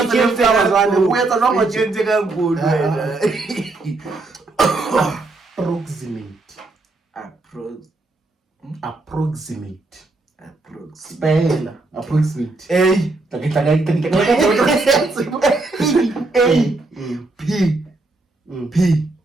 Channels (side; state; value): left; quieter; 3.2 dB